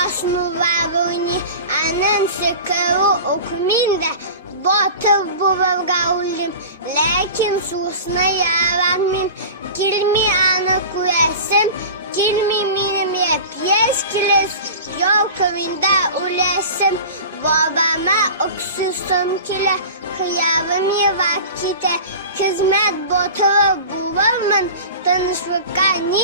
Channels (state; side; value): inverted; both; correlation -0.34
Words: основавани, анан се кару окминде, ботър бувавгаулим, лекин susna yaramim, kilmi ana kuresem, kilmi minim yepyes kiles, yol kavinde ulesem, babama oksusum kile, hıyavım yevakite, hizmet botağı buvalman, tanışvaka